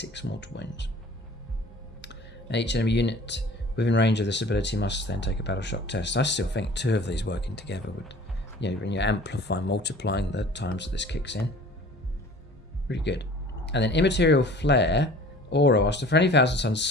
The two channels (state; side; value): normal; both; correlation 0.46